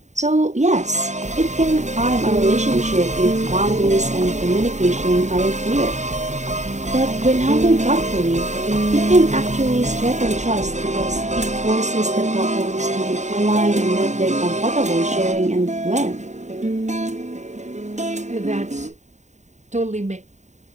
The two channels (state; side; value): late; left; 0.34 ms